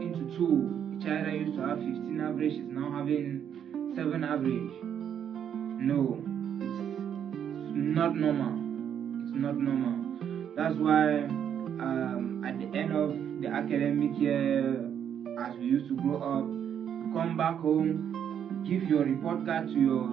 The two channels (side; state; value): left; quieter; 8.8 dB